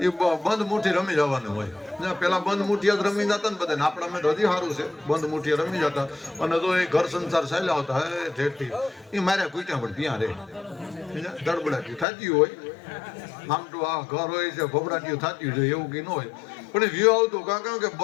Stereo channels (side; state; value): right; drops out; at 12.1 s